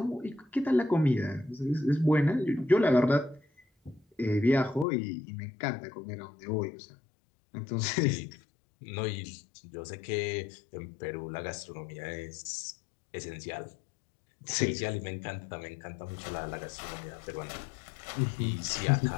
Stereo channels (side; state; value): right; drops out; at 4.9 s